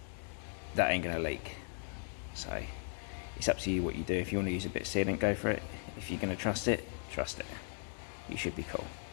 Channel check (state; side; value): silent; right; 53 dB below the other